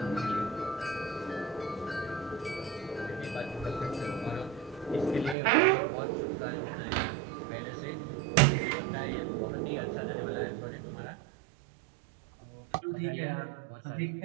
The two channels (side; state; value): left; drops out; at 5.4 s